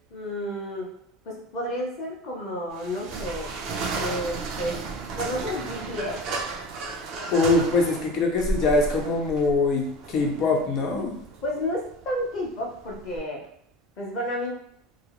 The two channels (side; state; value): both; normal; correlation 0.35